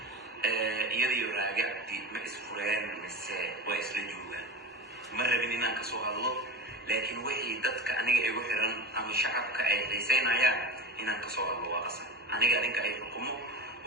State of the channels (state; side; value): normal; both; correlation 0.27